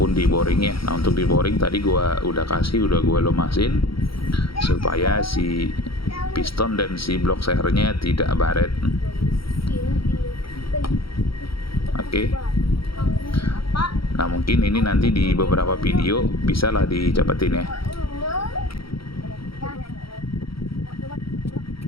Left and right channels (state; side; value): late; right; 0.75 ms